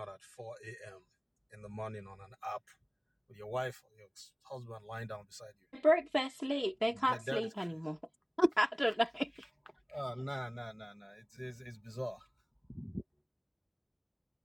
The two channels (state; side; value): identical; both; correlation 1.00